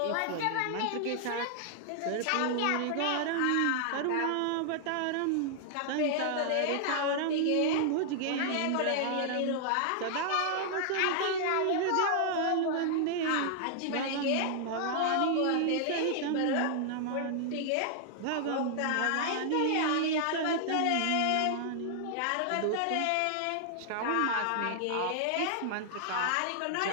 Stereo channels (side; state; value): both; different; correlation -0.01